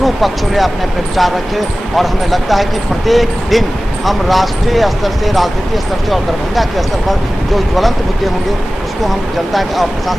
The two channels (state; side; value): normal; both; correlation 0.97